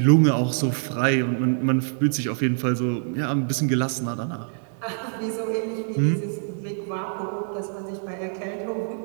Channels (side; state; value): left; silent; digital silence